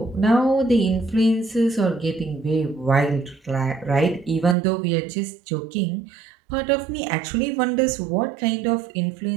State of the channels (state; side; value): drops out; left; at 4.5 s